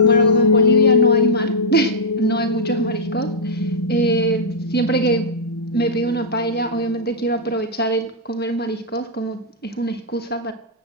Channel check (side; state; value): both; normal; correlation -0.09